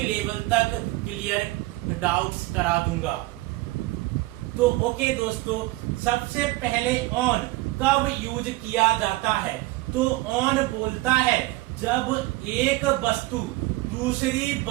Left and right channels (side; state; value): left; quieter; 20.1 dB